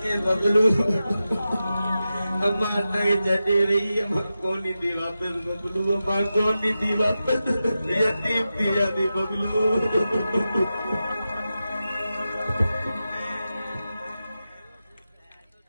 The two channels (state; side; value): inverted; both; correlation -0.92